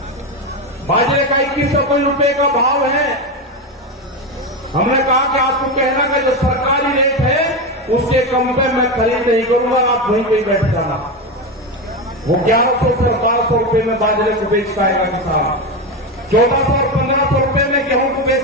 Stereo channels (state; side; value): normal; both; correlation 0.15